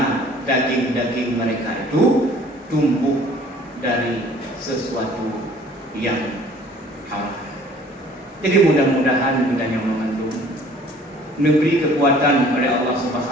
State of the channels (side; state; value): both; normal; correlation 0.53